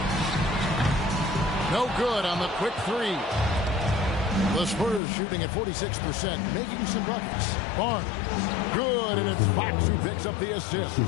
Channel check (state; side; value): drops out; right; at 5.0 s